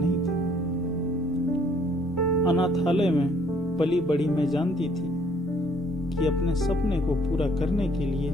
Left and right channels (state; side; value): normal; both; correlation 0.62